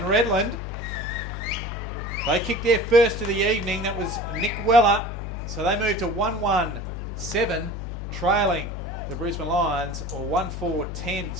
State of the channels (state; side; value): noise; left; hum, 6 dB below the sound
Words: Redland, they kicked their first of the evening. That was Nick Weller. So they moved to 1-1-7, trailing the Brisbane Lions, or 1-4-10.